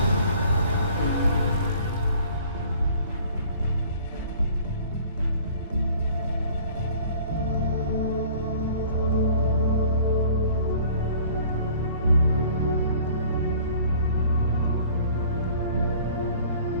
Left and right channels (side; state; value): both; inverted; correlation -0.51